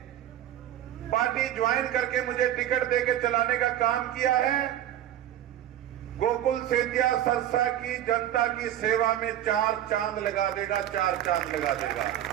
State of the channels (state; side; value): quieter; left; 11.9 dB